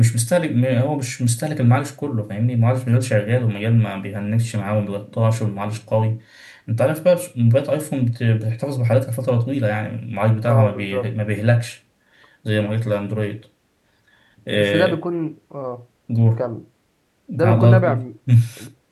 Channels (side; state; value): both; identical; correlation 1.00